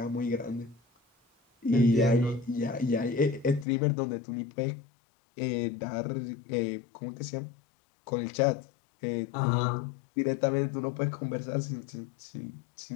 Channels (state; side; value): drops out; right; at 3.7 s